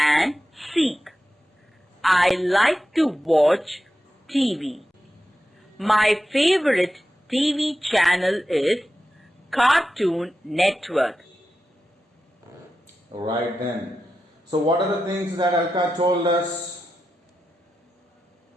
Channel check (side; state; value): both; normal; correlation 0.90